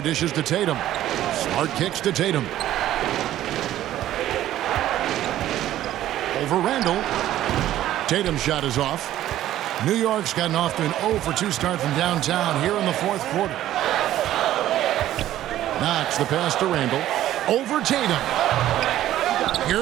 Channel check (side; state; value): left; quieter; 13.1 dB